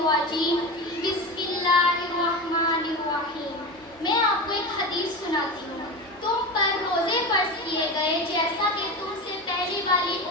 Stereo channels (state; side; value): normal; both; correlation 0.24